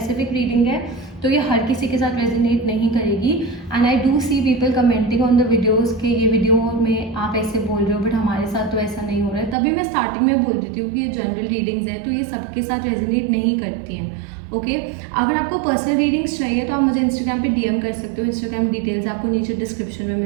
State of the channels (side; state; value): left; drops out; at 9.6 s